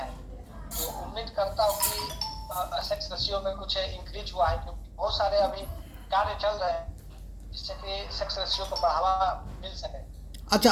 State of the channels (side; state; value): both; identical; correlation 1.00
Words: तो उम्मीद करता हूँ कि सेक्स रेशियो में कुछ इंक्रीज हुआ है, क्योंकि बहुत सारे अभी कार्य चल रहे हैं जिससे कि सेक्स रेशियो को बढ़ावा मिल सके।